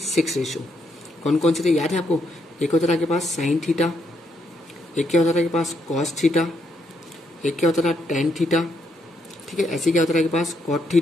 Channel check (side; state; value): both; normal; correlation 0.76